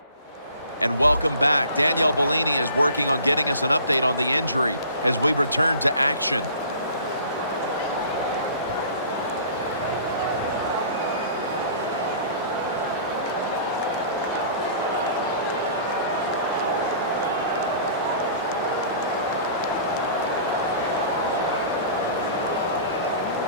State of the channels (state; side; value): inverted; both; correlation -0.46